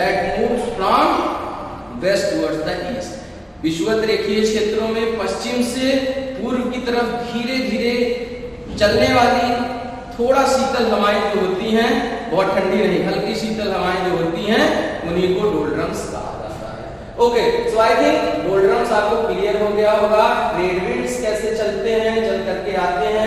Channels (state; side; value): identical; both; correlation 1.00